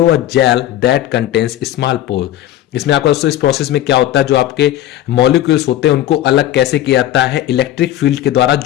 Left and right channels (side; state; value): right; quieter; 13.0 dB